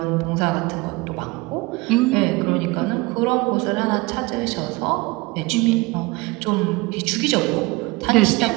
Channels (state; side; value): quieter; left; 23.3 dB